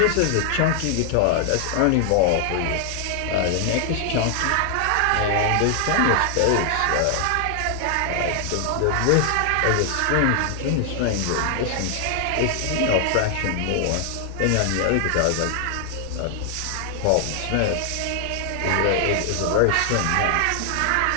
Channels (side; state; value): both; different; correlation 0.00